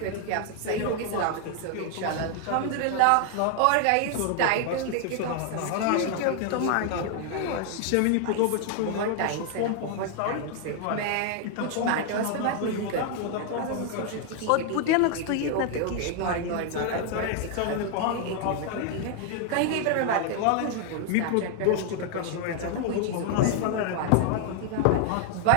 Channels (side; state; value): both; different; correlation 0.00